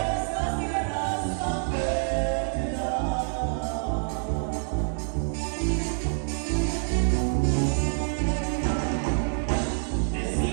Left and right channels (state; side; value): silent; left; digital silence